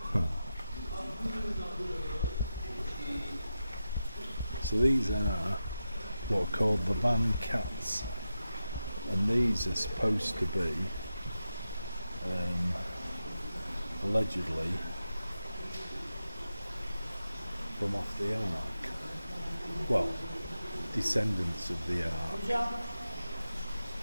So these are what are called the van cats, and these are supposed to be allegedly from off the Ark. Well, descendants of the Ark.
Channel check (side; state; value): both; inverted; correlation -0.90